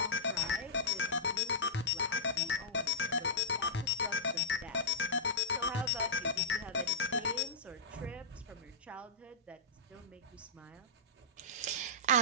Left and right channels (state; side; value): normal; both; correlation -0.13